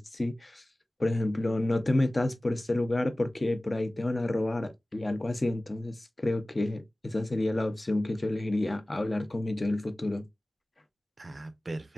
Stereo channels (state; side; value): normal; both; correlation 0.97